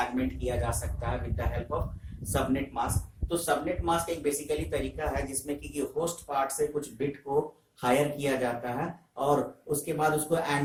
किया जा सकता है with the help of subnet mask. तो सबनेट मास्क एक बेसिकली तरीका है जिसमें कि होस्ट पार्ट से कुछ बिट को हायर किया जाता है और उसके बाद उसको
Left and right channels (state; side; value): identical; both; correlation 1.00